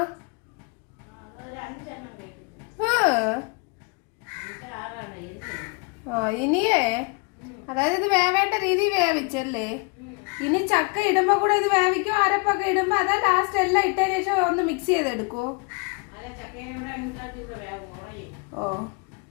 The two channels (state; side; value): quieter; right; 31.9 dB